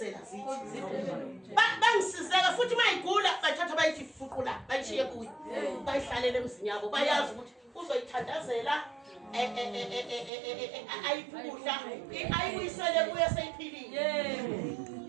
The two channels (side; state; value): left; drops out; at 10.3 s